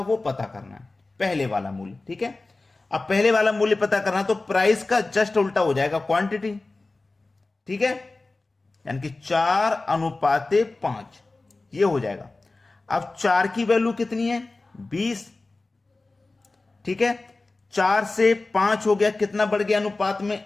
वो पता करना है। पहले वाला मूल्य, ठीक है। अब पहले वाला मूल्य पता करना, तो प्राइस का जस्ट उल्टा हो जाएगा, क्वांटिटी। ठीक है, यानी कि 4/5 ये हो जाएगा। अब 4 की वैल्यू कितनी है? 20। ठीक है, 4 से 5 हो गया, कितना बढ़ गया अनुपात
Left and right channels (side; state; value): right; quieter; 3.3 dB